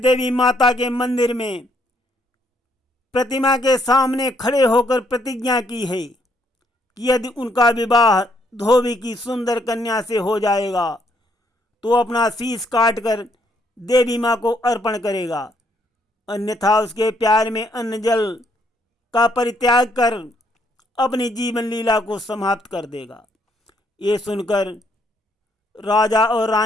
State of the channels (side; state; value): both; normal; correlation 0.71